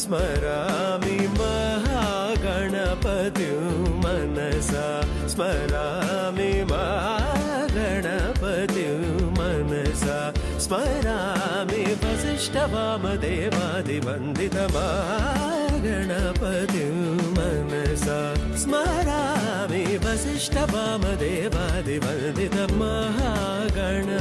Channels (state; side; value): identical; both; correlation 1.00